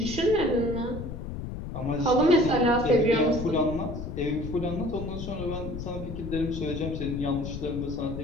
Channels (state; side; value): noise; left; rumble, 7 dB below the sound